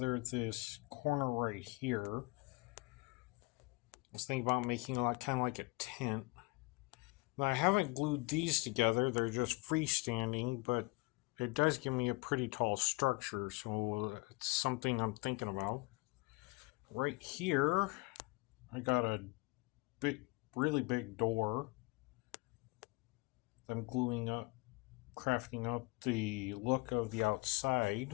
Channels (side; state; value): right; quieter; 25.7 dB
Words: this corner right here. I was thinking about making it kind of like a tent. Now, I haven't glued these together, they're just freestanding, but it does give me a pretty tall structure, so it's something I'm thinking about. Right here, I got a really big door that I'm gluing up, crafting up the look of the